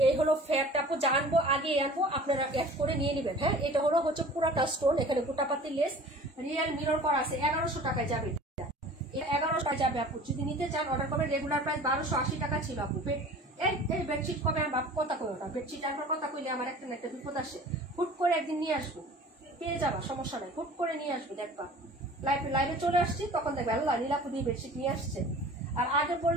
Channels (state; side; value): normal; both; correlation 0.44